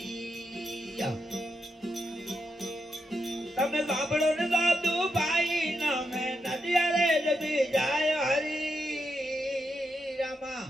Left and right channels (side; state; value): both; normal; correlation 0.84